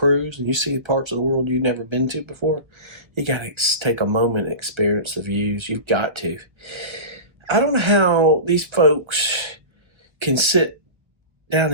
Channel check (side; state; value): left; late; 1.3 ms